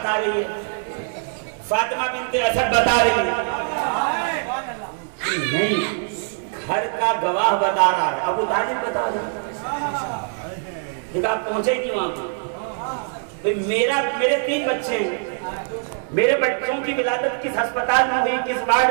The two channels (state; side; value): silent; left; 64 dB below the other